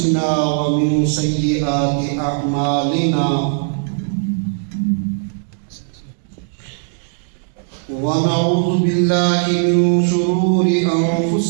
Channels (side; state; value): left; silent; digital silence